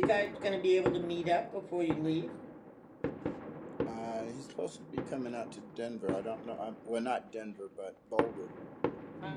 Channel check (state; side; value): identical; both; correlation 1.00